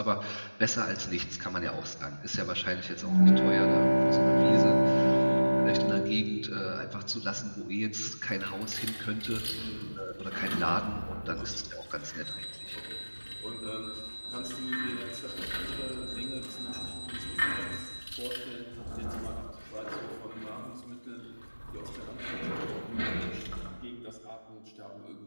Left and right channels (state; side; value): inverted; both; correlation -1.00